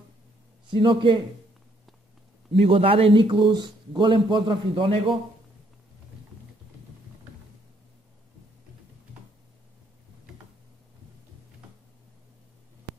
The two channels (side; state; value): both; normal; correlation 0.69